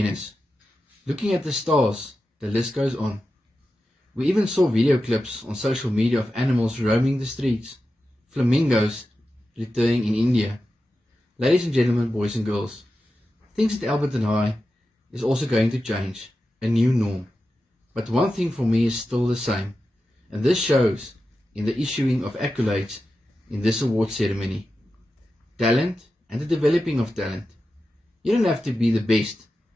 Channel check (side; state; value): both; normal; correlation 0.91